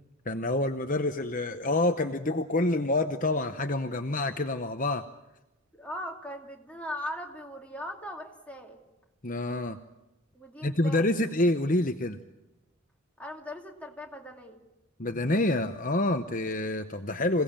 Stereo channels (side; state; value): both; normal; correlation 0.34